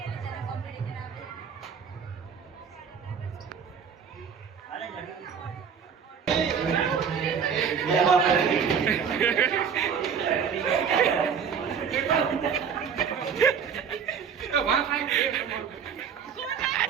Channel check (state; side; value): quieter; left; 6.9 dB